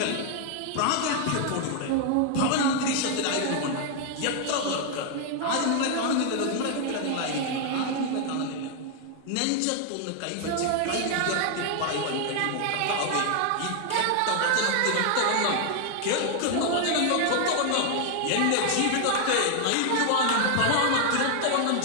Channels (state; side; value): different; both; correlation 0.00